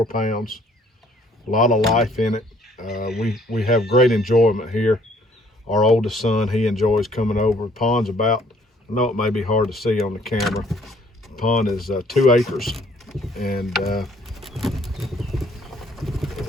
pounds. A lot of life in it. We have great enjoyment here. Our oldest son, he enjoys coming over. The pond's about, I know it may be hard to see on the camera, the pond is 2 acres, and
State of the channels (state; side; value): normal; both; correlation 0.61